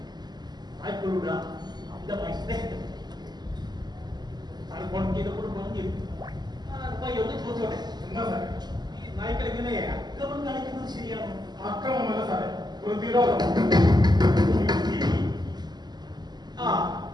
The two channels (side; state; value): left; late; 0.20 ms